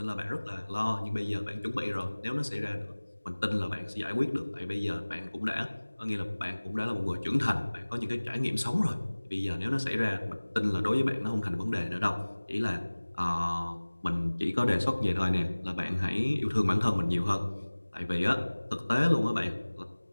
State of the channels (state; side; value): inverted; both; correlation -1.00